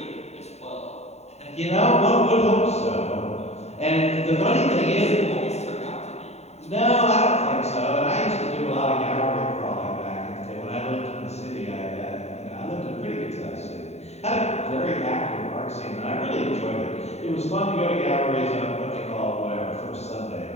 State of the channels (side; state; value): right; late; 0.32 ms